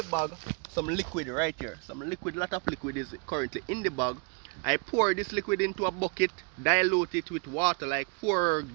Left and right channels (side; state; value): left; quieter; 37.1 dB